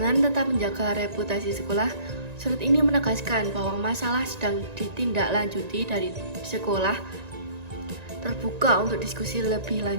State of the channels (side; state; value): left; late; 1.9 ms